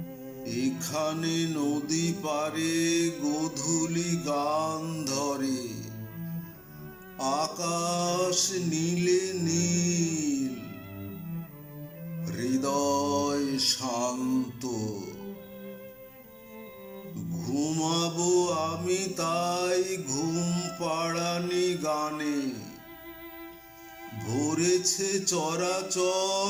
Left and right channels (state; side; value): identical; both; correlation 1.00